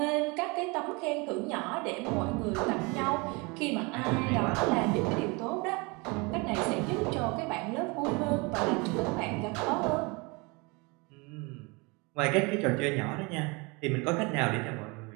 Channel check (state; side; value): quieter; left; 27.7 dB